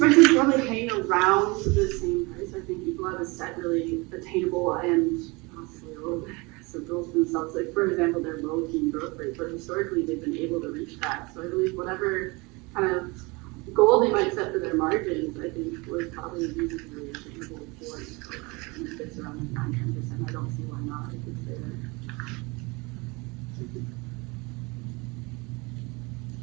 it to probably hang around the same price. I think Ecolab has set really attainable and possibly a little bit aggressive goals for themselves. Like, for example, their low teen growth rate, but historically they've been able to reach that. So I believe whatever kind of goal they might set for their margins, I think would probably be reasonably attainable for Ecolab. And if it's around like 9-10%, I don't see why not. It could stay there.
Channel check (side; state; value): left; quieter; 26.2 dB